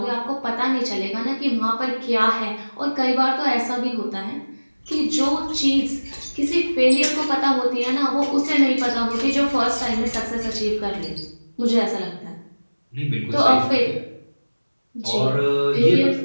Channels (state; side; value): inverted; both; correlation -1.00